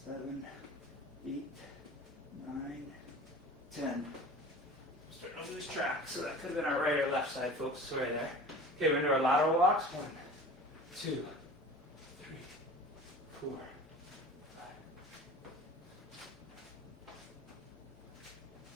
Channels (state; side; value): normal; both; correlation 0.40